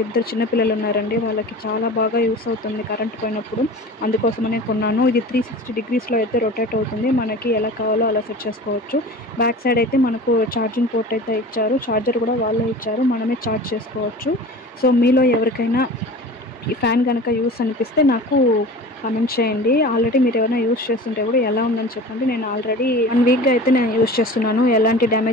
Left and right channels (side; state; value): both; normal; correlation 0.37